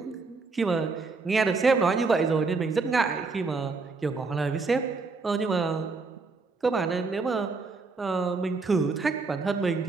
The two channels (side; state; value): left; quieter; 4.1 dB